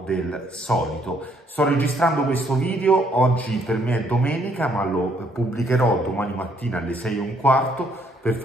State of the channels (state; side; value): normal; both; correlation 0.68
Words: del solito. Sto registrando questo video, oggi per me è domenica, ma lo pubblicherò domani mattina alle 6:15 per